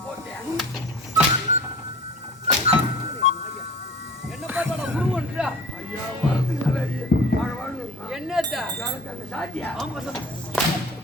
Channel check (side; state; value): both; normal; correlation 0.43